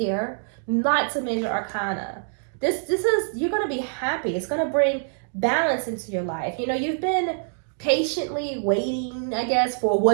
not to major arcana. This is, you're going to be happy. It's going to bring balance into your life. You know, you've been patiently waiting, I guess, for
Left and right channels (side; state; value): left; silent; digital silence